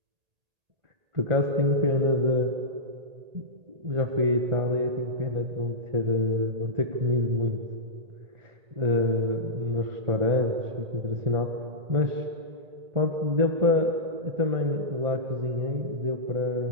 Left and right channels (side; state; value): left; late; 1.8 ms